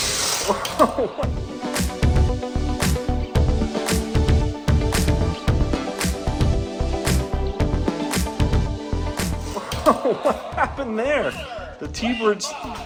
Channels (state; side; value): identical; both; correlation 1.00